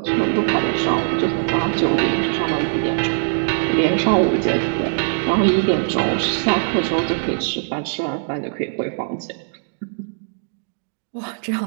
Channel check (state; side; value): silent; left; digital silence